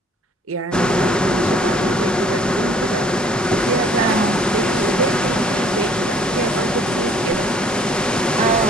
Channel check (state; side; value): normal; both; correlation 0.58